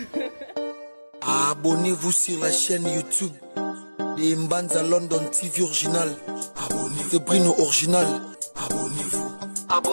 Abonnez-vous sur la chaîne YouTube de Mbanza London TV original. Abonnez-vous. De Bruno original. Abonnez-vous.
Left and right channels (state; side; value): inverted; both; correlation -1.00